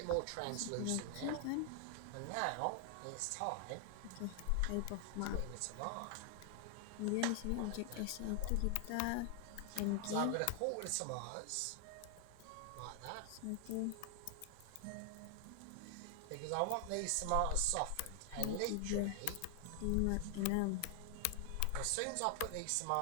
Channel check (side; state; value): both; different; correlation 0.00